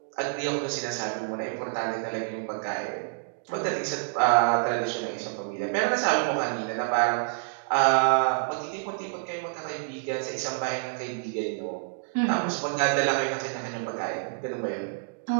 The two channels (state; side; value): silent; left; digital silence